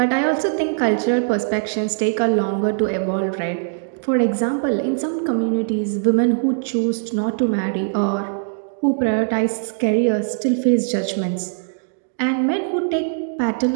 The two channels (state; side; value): silent; left; digital silence